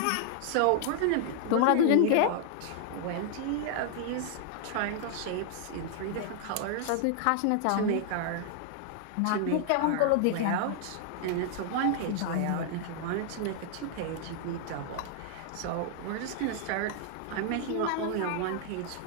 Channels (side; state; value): both; different; correlation -0.01